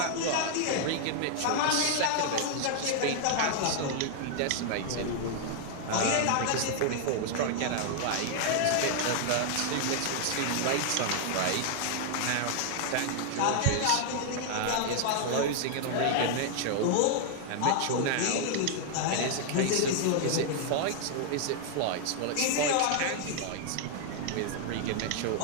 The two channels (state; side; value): different; both; correlation 0.00